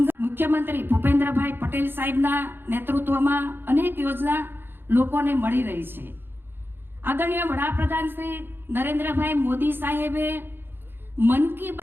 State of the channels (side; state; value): left; late; 0.10 ms